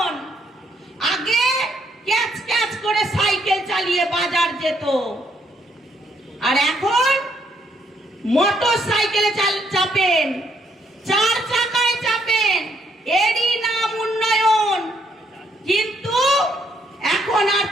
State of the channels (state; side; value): normal; both; correlation 0.71